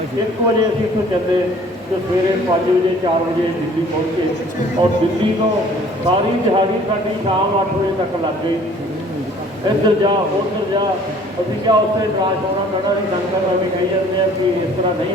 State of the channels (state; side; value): normal; both; correlation 0.53